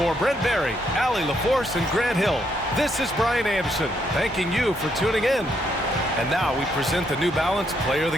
Brent Barry, Allie LaForce, and Grant Hill, this is Brian Anderson, thanking you for tuning in. And now we present the New Balance Player of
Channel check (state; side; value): normal; both; correlation 0.74